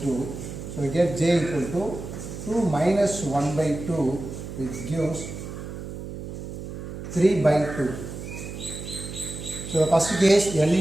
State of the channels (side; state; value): right; noise; hum, 9 dB below the sound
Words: 2. So we get J equal to 2 minus 1 by 2, which gives 3 by 2. So the first case L